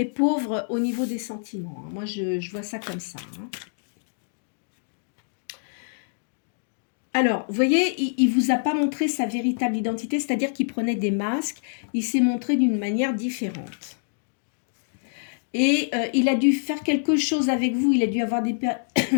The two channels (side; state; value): right; silent; digital silence